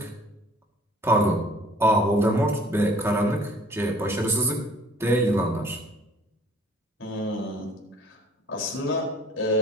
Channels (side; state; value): both; normal; correlation 0.53